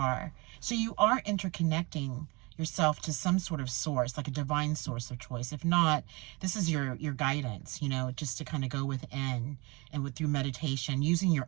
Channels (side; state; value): left; quieter; 26.3 dB